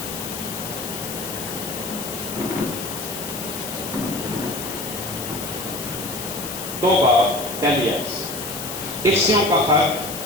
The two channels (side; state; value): left; noise; hiss, 7 dB below the sound